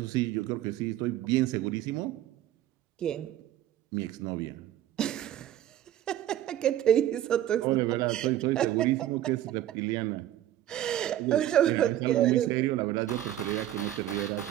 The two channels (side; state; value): left; quieter; 12.5 dB